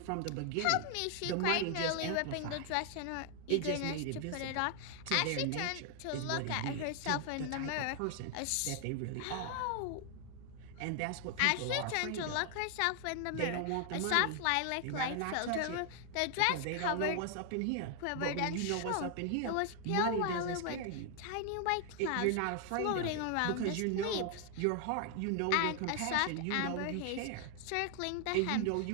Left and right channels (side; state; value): both; different; correlation 0.00